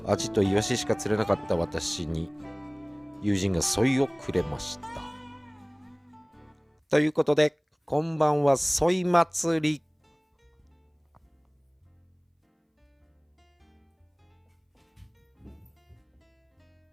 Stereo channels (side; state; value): both; identical; correlation 1.00